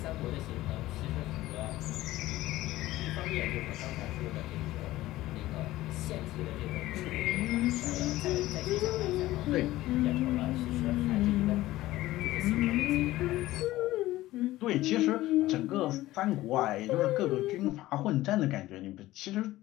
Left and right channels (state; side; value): quieter; right; 16.5 dB